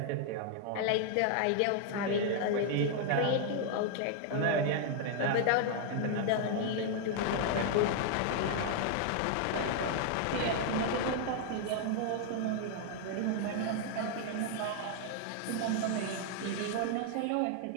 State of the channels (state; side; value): different; both; correlation 0.00